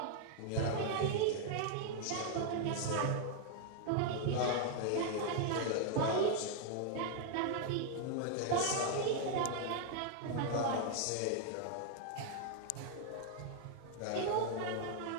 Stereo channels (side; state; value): both; different; correlation 0.00